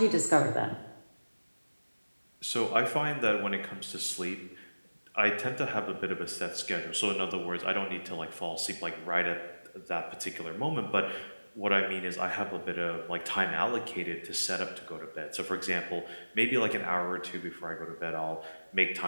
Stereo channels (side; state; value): both; inverted; correlation -1.00